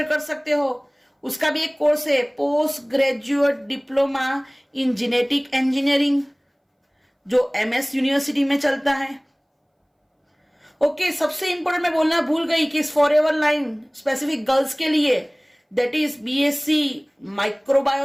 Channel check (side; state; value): both; identical; correlation 1.00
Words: कर सकते हो, उसका भी एक कोर्स है, post graduate diploma in genetic engineering, जो MS यूनिवर्सिटी में चलता है। ओके, सबसे इंपॉर्टेंट मैं बोलना भूल गई कि इस फॉरएवर लाइन स्पेसिफिक गर्ल्स के लिए, that is BSc